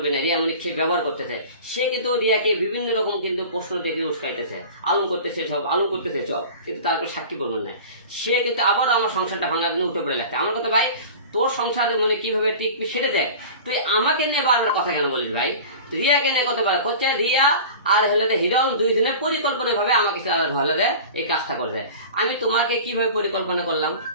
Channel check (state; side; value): inverted; both; correlation -0.37